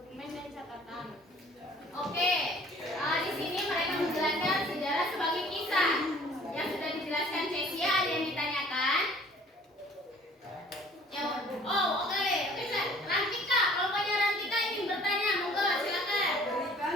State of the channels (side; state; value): both; normal; correlation 0.53